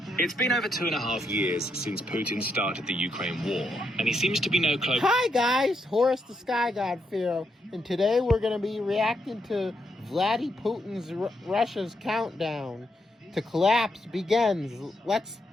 It's been over 2.5 years since Putin started the Ukraine war, and he seems to be no closer. Hi guys, Horus the Sky God Pharaoh, and today we're going to be reacting to Vladimir Putin's Russia's countdown to collapse begins. Let's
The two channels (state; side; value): normal; both; correlation 0.79